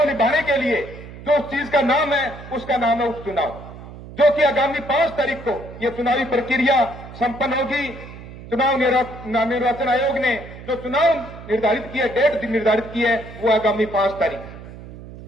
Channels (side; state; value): right; noise; hum, 15 dB below the sound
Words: निभाने के लिए जो चीज का नाम है उसका नाम है उपचुनाव, जो कि आगामी 5 तारीख को यह चुनावी प्रक्रिया संपन्न होगी। चुनाव निर्वाचन आयोग ने जो चुनाव निर्धारित किया, डेट निर्धारित की है, वो आगामी 5 तारीख।